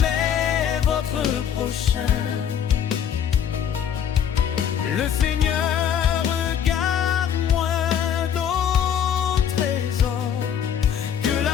votre prochain. Le Seigneur regarde moins nos trésors que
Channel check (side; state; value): right; quieter; 8.7 dB